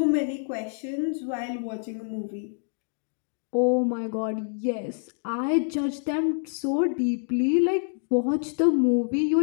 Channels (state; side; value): silent; right; digital silence